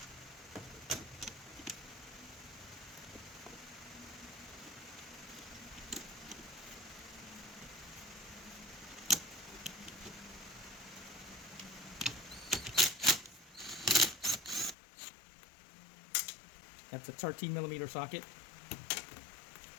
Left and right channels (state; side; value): drops out; right; at 14.8 s